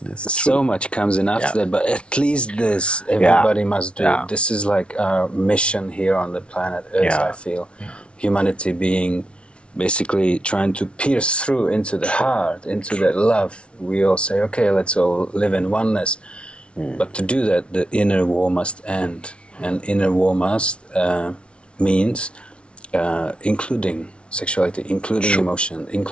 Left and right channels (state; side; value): late; right; 0.059 ms